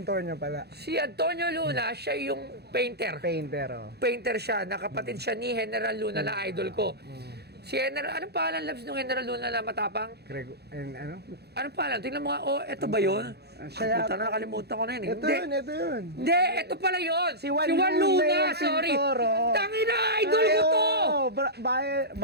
pala. Si Antonio Luna, siya yung painter. Painter, oh. Painter siya, nakapatid siya ni General Luna na idol ko. Si General, anong pangalan labs ng General Luna na matapang? Ano? Anong pangalan? Tingnan mo nga, eto ba yun? Siya Puta na, nakalimutan ko na yun. Ito yun. Hindi, ito pala yun. Si Juan Luna, sorry. pintor, oh. Tangina, idol ko to!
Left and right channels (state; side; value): late; left; 0.48 ms